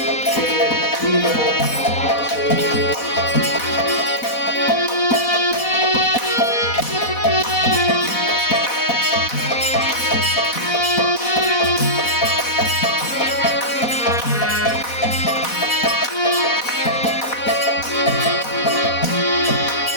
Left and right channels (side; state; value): right; late; 4.1 ms